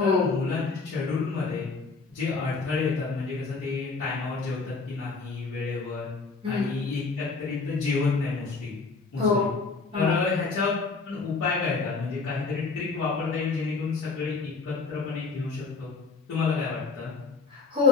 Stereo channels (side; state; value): right; quieter; 4.3 dB